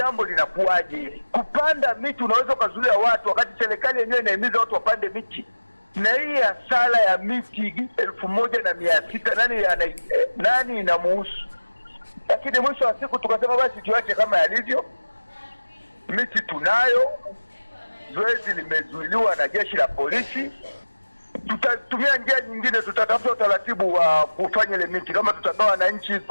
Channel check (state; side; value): inverted; both; correlation -1.00